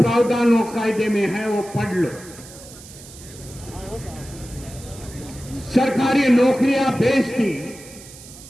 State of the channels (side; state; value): right; noise; hiss, 18 dB below the sound